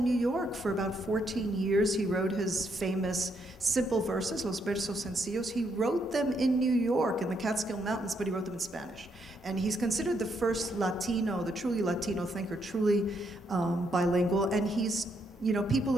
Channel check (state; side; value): normal; both; correlation 0.76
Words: New York for about 14 years. He wrote his famous simple verses, Los Versos Sencillos. He wrote them in New York, in the Catskill Mountains, but he wrote them in Spanish. And he's considered the first Latino, the truly Latino thinker, truly bilingual, and people